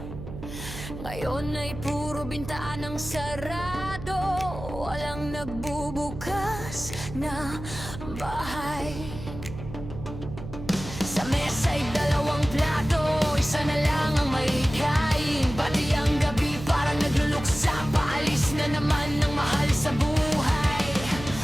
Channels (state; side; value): noise; right; hum, 11 dB below the sound